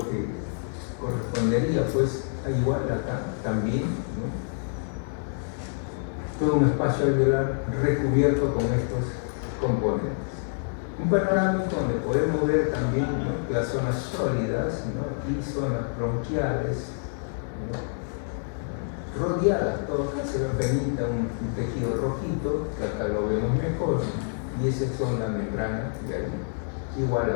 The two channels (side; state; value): right; silent; digital silence